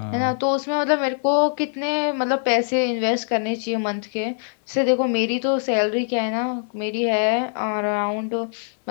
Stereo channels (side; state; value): right; silent; 64 dB below the other